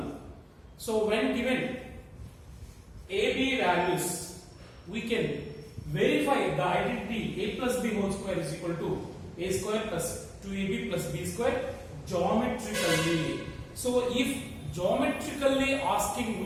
So when given AB values, we can verify the identity A plus B whole square is equal to A square plus 2AB plus B square geometrically. So if geometrically asking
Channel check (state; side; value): identical; both; correlation 1.00